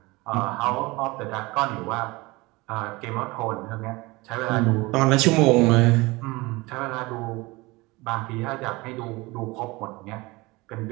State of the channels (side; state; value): left; quieter; 22.8 dB